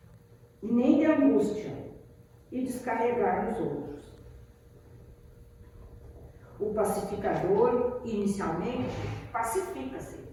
e nem de angústia e descarregar nos outros. O pacificador, inicialmente, pacifica-se.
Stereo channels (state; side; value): identical; both; correlation 1.00